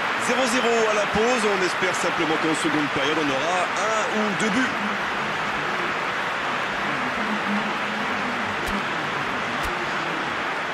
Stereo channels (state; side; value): identical; both; correlation 1.00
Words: 0-0 à la pause. On espère simplement qu'en seconde période, on aura un ou deux buts.